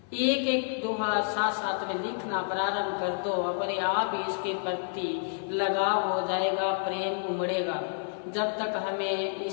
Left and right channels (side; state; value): right; silent; 58 dB below the other